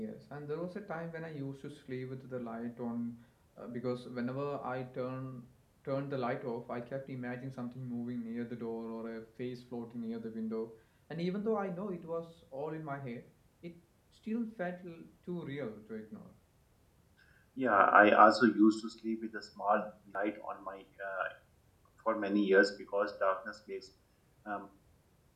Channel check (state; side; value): identical; both; correlation 1.00